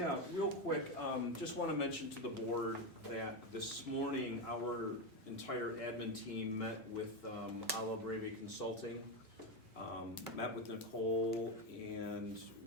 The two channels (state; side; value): normal; both; correlation 0.11